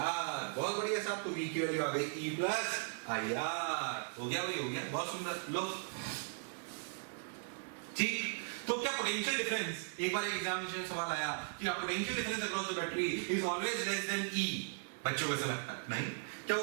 बहुत बढ़िया साहब, तो v की वैल्यू आ गई e प्लस आई आर। हो गया भाई, हो गया, बहुत सुंदर। लो ठीक, तो क्या पोटेंशियल डिफरेंस, एक बार एक एग्जामिनेशन में सवाल आया कि potential difference across the battery is always less than E, बच्चों को ऐसा लगता है नहीं, क्या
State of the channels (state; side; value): silent; left; digital silence